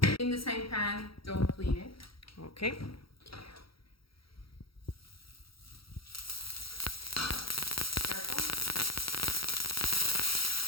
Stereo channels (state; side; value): late; right; 0.75 ms